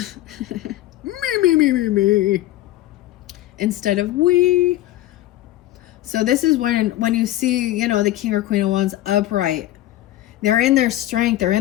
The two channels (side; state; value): right; quieter; 15.2 dB